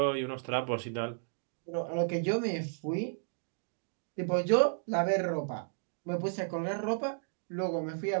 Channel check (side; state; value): left; silent; digital silence